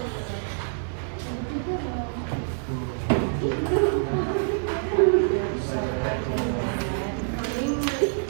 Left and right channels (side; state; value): left; silent; digital silence